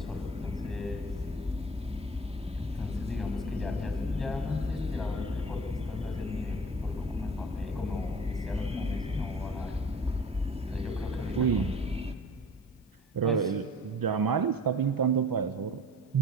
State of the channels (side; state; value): both; normal; correlation 0.44